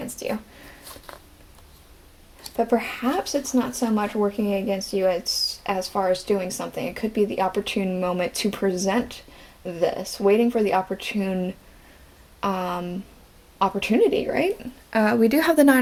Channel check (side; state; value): both; identical; correlation 1.00